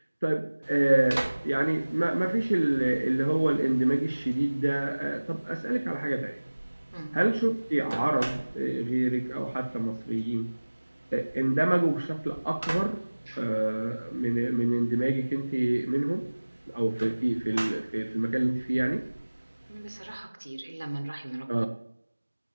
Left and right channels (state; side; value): inverted; both; correlation -1.00